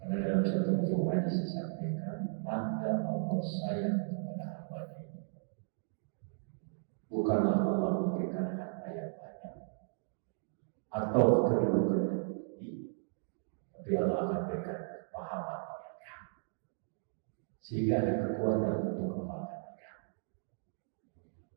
Karena dalam satu buku hadis disampaikan, tanda Allah sayang kepada hamba ini bukanlah Allah memberikan harta yang banyak atau kedudukan yang tinggi, tapi Allah akan berikan kepahaman yang kamu, sehingga ada kekuatan untuk kembangkan kamu.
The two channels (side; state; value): left; silent; digital silence